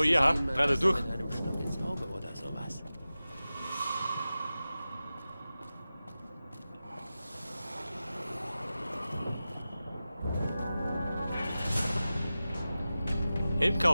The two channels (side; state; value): both; inverted; correlation -0.95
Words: ja, gerade durch. Mit einem Stock ins Auge oder sowas. Im